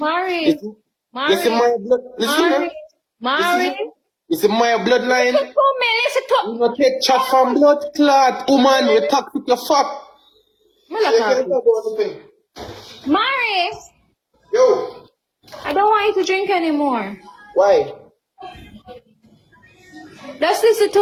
It's in my blood. Listen, Mari. It's in my bloodline. Listen to me. You don't take chat from blood clot, woman. You talk with your fuck. Mari. Yo. I don't want you to drink anymore. Why? Just listen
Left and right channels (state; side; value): identical; both; correlation 1.00